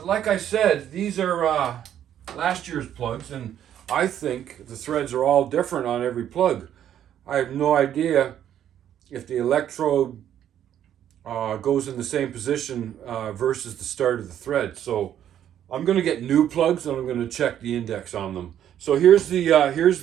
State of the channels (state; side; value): quieter; left; 10.4 dB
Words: like I said, these are last year's plugs, and I think the threads are all different on every plug. I have no idea if the electrode goes in the same position versus the start of the thread. So I'm going to get new plugs, and I'm going to check the index on them. So here's